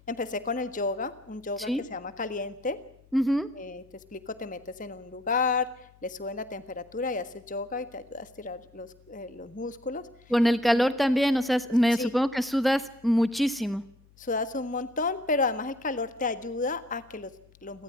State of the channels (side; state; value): left; noise; hum, 28 dB below the sound